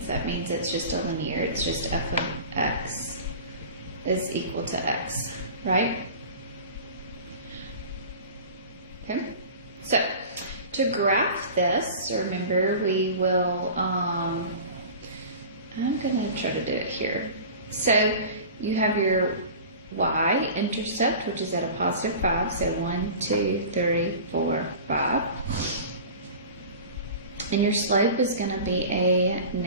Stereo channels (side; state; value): both; inverted; correlation -0.37